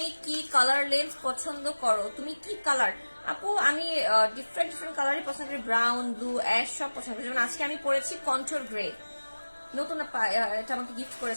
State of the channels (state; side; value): inverted; both; correlation -1.00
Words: কি কালার লেন্স পছন্দ করো? তুমি কি কালার? আপু আমি ডিফারেন্ট ডিফারেন্ট কালারই পছন্দ করি, ব্রাউন, ব্লু, অ্যাশ সব পছন্দ করি। যেমন আজকে আমি পরেছি কন্ট্রোল গ্রে, নতুন এটা আমাকে গিফট